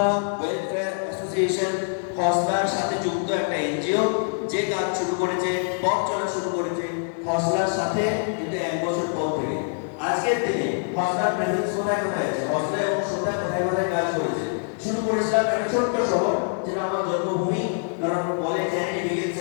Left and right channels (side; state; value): right; silent; digital silence